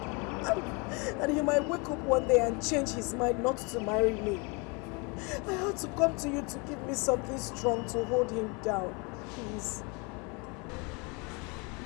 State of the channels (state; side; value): quieter; right; 29.8 dB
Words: And he might wake up one day and change his mind not to marry me. I had to come to you to give me something strong to hold him down. Please.